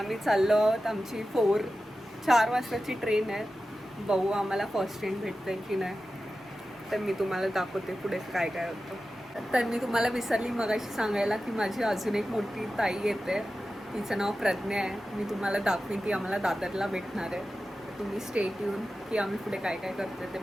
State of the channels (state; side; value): normal; both; correlation 0.93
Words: चाललो आहोत. आमची 4 वाजताची ट्रेन आहे. बघू आम्हाला फर्स्ट ट्रेन भेटते की नाही, तर मी तुम्हाला दाखवते पुढे काय काय होतं. तर मी तुम्हाला विसरली मगाशी सांगायला की माझी अजून एक मोठी ताई येते, तिचं नाव प्रज्ञा आहे. मी तुम्हाला दाखवीन, ती आम्हाला दादरला भेटणार आहे. तुम्ही स्टेट येऊन की आम्ही पुढे काय काय करतोय ते